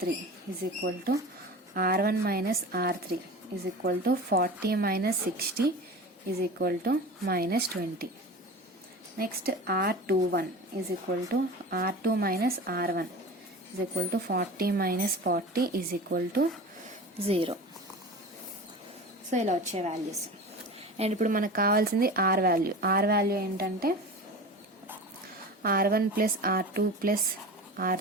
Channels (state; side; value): normal; both; correlation 0.33